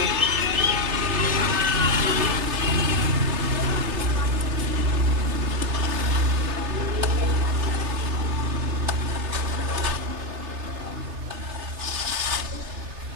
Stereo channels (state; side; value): late; left; 3.3 ms